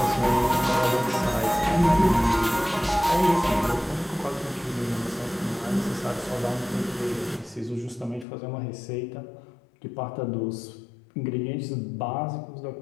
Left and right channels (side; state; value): right; drops out; at 8.2 s